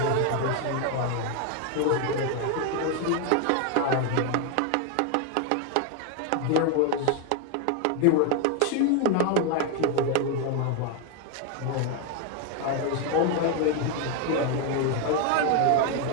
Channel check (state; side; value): different; both; correlation 0.01